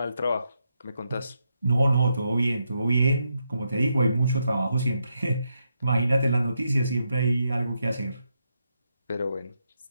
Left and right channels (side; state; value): both; inverted; correlation -0.82